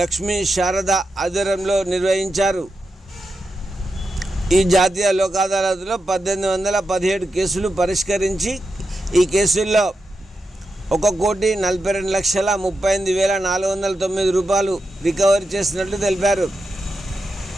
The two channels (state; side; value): normal; both; correlation 0.88